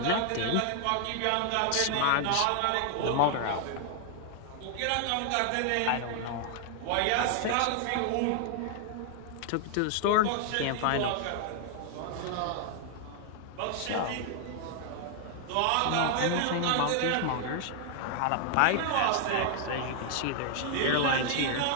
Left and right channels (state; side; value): different; both; correlation 0.00